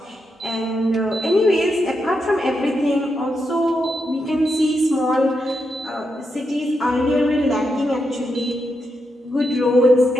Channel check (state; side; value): normal; both; correlation 0.84